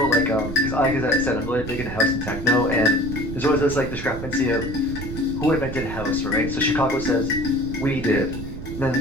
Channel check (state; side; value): noise; right; rumble, 8 dB below the sound